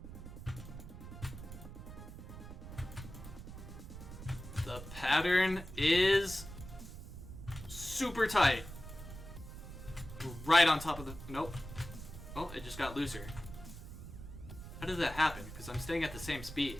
The pattern is super tight. Right on top of the... Nope. Oh, it just got looser. How did that happen? Because I'm staying at the same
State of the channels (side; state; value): right; noise; rumble, 12 dB below the sound